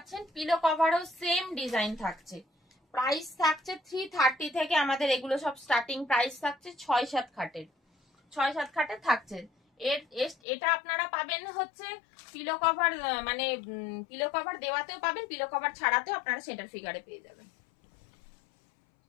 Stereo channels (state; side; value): drops out; right; at 10.4 s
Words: পিলো কভারও সেম ডিজাইন থাকছে। প্রাইস থাকছে 330 থেকে, আমাদের এগুলো সব স্টার্টিং প্রাইস থাকছে 6-7 খাটের, 6-7 খাটের থাকছে। এটা আপনারা পাবেন হচ্ছে পিলো কভার, মানে পিলো কভার দেওয়াতেও পাবেন, পিলো কভার ছাড়াতেও আপনারা সেটার ফিগারে পেয়ে যাবেন।